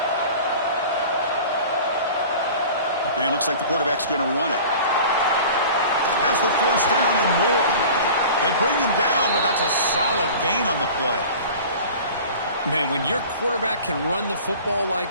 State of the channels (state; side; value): inverted; both; correlation -0.41